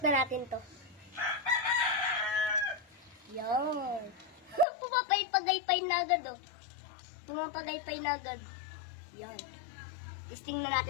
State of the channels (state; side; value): drops out; right; at 4.7 s